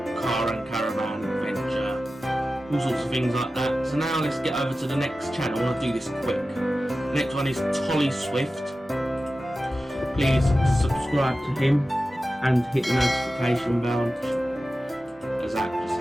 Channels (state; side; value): normal; both; correlation 0.94